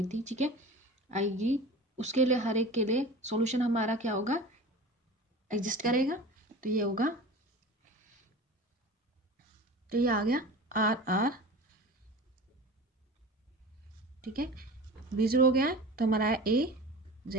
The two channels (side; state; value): both; normal; correlation 0.35